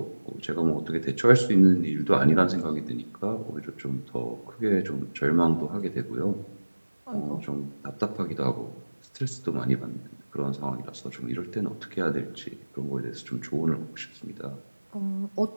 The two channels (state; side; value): inverted; both; correlation -1.00